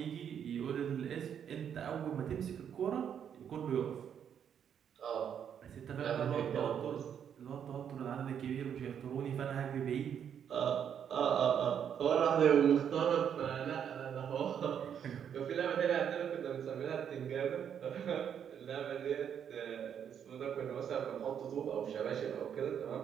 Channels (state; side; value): quieter; left; 8.5 dB